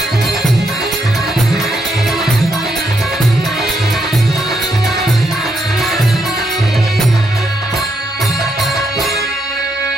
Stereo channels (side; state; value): both; normal; correlation 0.78